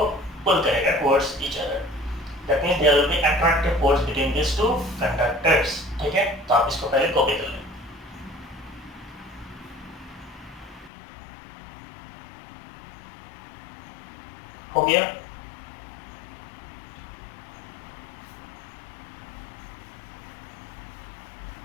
pull करेगा towards each other. That means there will be attractive force between these two conductors. ठीक है, तो आप इसको पहले कॉपी कर लें. हो गया?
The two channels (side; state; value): right; drops out; at 10.9 s